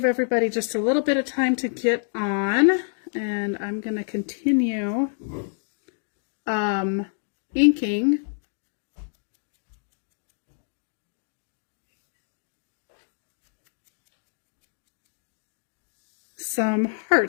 everybody just a little bit of time to get on, and I'm going to continue inking some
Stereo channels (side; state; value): right; silent; digital silence